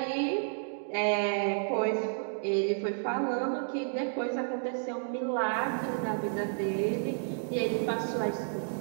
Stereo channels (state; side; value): silent; left; digital silence